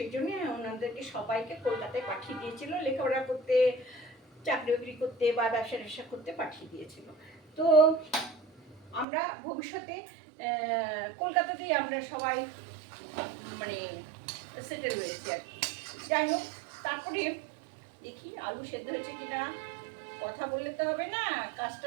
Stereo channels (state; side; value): drops out; left; at 9.1 s